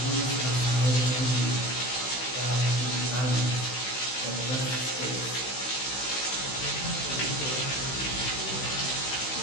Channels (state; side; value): late; right; 16 ms